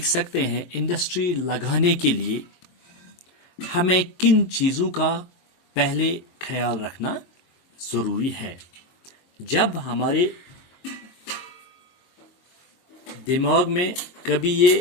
سکتے ہیں انڈسٹری لگانے کے لیے ہمیں کن چیزوں کا پہلے خیال رکھنا ضروری ہے. جب ہمارے دماغ میں کبھی یہ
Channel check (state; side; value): late; right; 22 ms